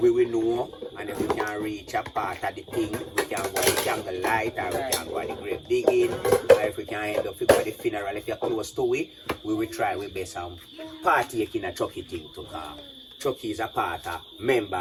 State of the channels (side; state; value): both; identical; correlation 1.00